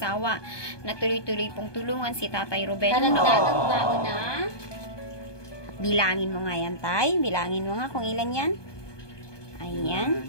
na tuloy-tuloy pong tulungan si Tatay Ruben. Talagdagang baon na. Bilangin mo nga yan, Tay. Bilangin mo nga kung ilan yan.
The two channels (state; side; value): late; right; 1.2 ms